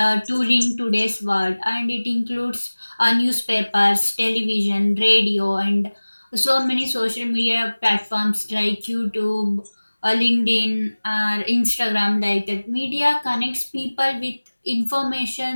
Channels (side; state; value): both; inverted; correlation -1.00